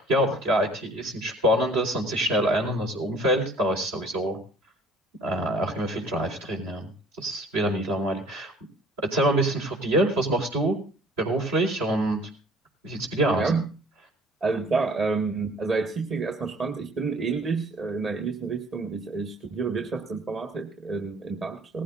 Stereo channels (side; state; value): both; normal; correlation 0.53